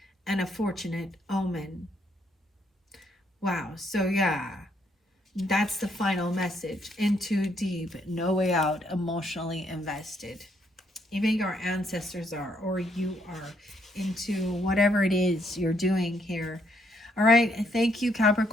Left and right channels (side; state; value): both; normal; correlation 0.72